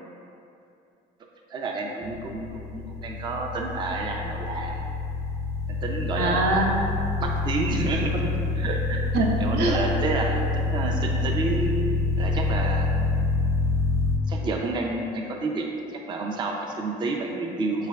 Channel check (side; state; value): both; normal; correlation 0.37